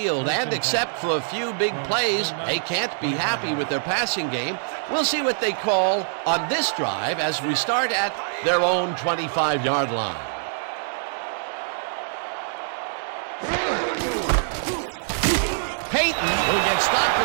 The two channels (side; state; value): left; silent; digital silence